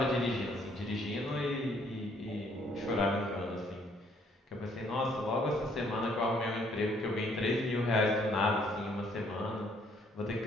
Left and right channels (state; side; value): normal; both; correlation 0.65